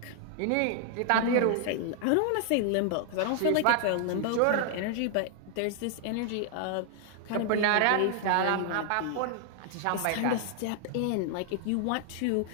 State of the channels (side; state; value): both; different; correlation 0.00